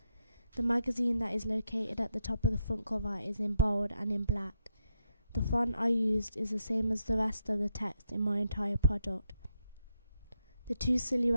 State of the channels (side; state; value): both; inverted; correlation -0.81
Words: The magazine that is located at the top of the front cover is in bold and in black. The font I used is the same as the rest of the text in my entire product. The two